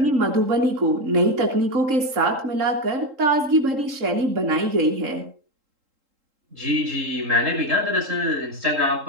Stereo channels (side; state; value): left; late; 3.8 ms